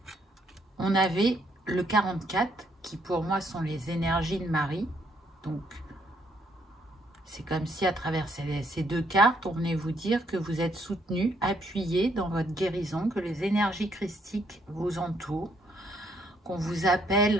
on avait le 44 qui pour moi sont les énergies de Marie. Donc, c'est comme si à travers ces deux cartes, on venait vous dire que vous êtes soutenu, appuyé dans votre guérison, que les énergies christiques vous entourent, qu'on vous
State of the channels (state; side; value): normal; both; correlation 0.70